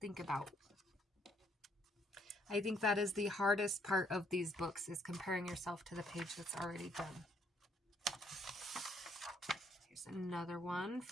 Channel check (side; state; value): both; normal; correlation 0.69